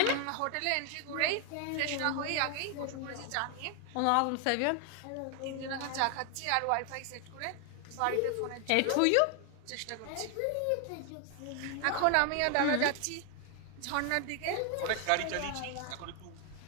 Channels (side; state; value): both; different; correlation 0.01